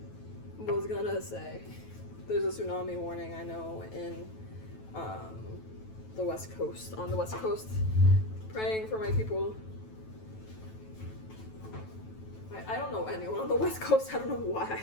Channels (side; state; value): right; late; 9.2 ms